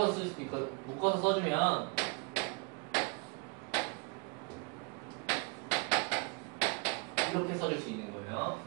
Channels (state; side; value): quieter; left; 32.6 dB